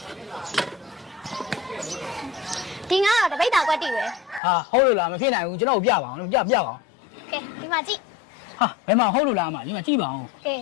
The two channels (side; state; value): right; drops out; at 4.4 s